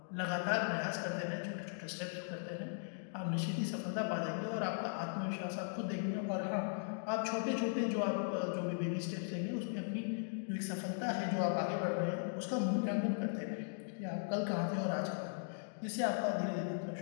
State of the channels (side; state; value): right; silent; digital silence